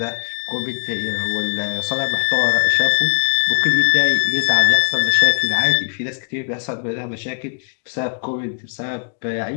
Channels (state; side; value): silent; right; digital silence